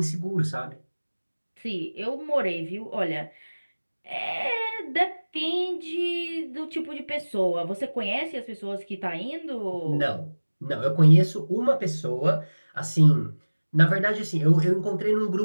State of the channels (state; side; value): inverted; both; correlation -1.00